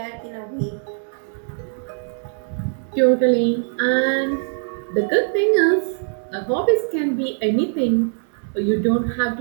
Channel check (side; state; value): left; silent; digital silence